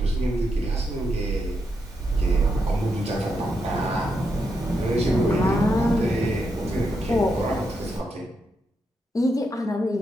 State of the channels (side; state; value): both; normal; correlation 0.82